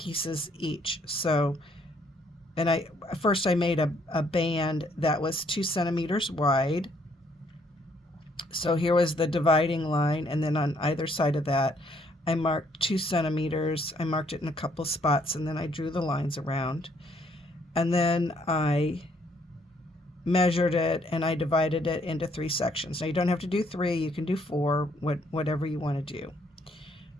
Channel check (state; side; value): normal; both; correlation 0.68